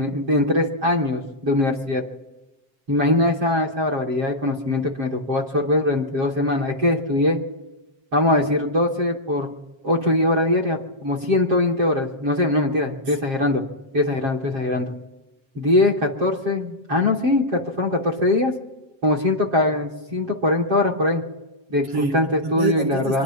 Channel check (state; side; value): late; left; 7.5 ms